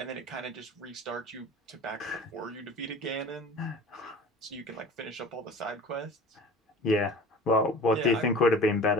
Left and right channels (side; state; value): both; normal; correlation 0.41